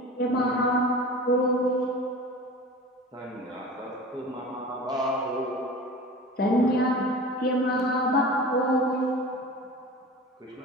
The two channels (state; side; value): normal; both; correlation 0.36